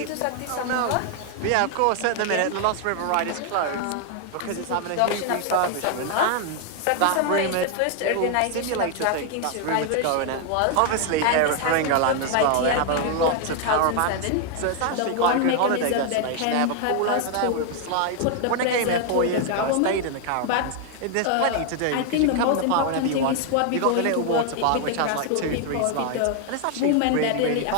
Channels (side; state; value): both; different; correlation 0.00